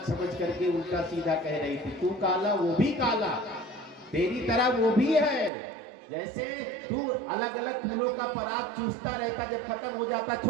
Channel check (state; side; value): drops out; left; at 5.5 s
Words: समझ करके उल्टा सीधा कह रही थी, तू काला वो भी काला, तेरी तरह वो भी है, जैसे तू अलग अलग फूलों का पराग चूसता रहता, जब खत्म हो जाता